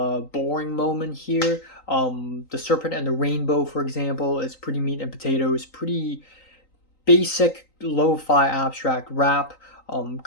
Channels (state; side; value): late; right; 3.9 ms